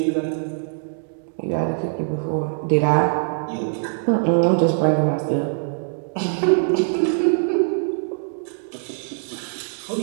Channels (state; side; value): silent; left; digital silence